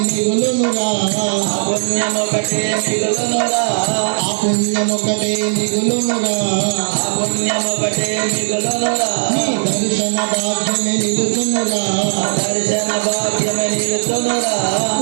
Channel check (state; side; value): silent; left; digital silence